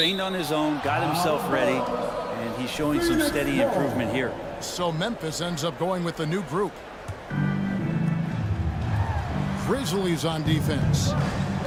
on his own, got himself ready, and he's showing some steady improvement here. So Memphis ends up going with the new group. Grizzlies on defense.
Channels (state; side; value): identical; both; correlation 1.00